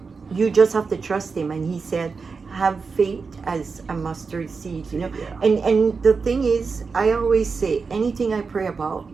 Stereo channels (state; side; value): quieter; left; 4.9 dB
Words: You just have to trust Him. And He said, have faith as a mustard seed, you know. Yeah. And the thing is, I always say, anything I pray about,